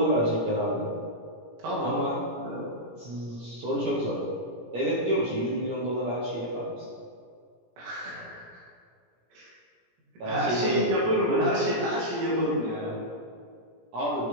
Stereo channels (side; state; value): left; late; 17 ms